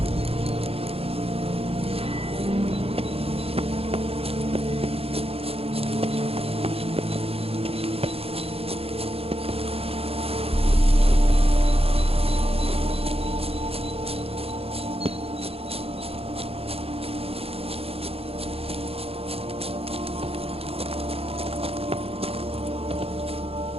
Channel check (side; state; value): left; late; 0.28 ms